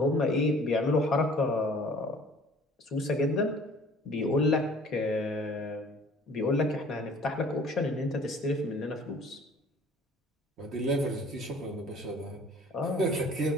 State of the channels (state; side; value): normal; both; correlation 0.51